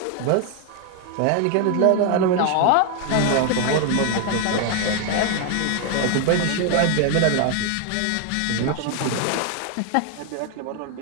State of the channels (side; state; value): both; different; correlation 0.00